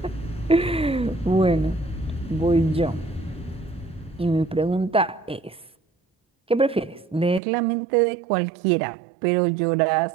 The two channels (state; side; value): drops out; left; at 7.4 s